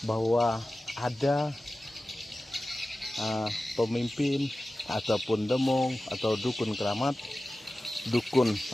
bahwa ada pemimpin ataupun demong atau dukun keramat, dukun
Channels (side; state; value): both; normal; correlation 0.95